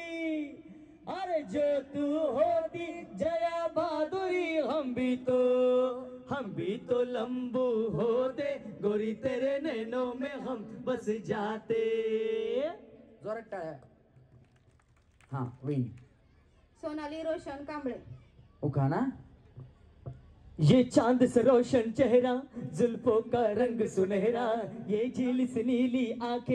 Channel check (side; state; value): both; identical; correlation 1.00